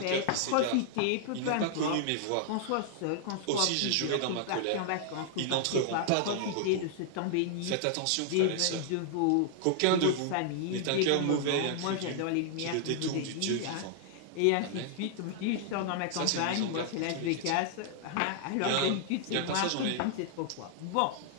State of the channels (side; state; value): both; different; correlation -0.01